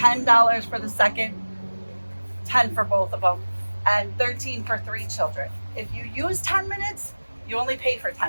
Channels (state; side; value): inverted; both; correlation -1.00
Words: for the second, $10 for both of them. and 13 for 3 children. If you use 10 minutes, you only pay for